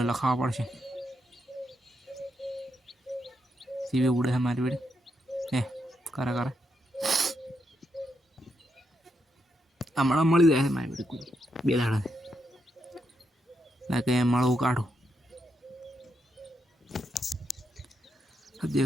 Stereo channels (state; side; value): normal; both; correlation 0.81